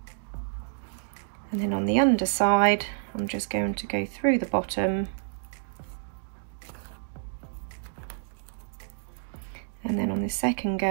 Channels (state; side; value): silent; left; digital silence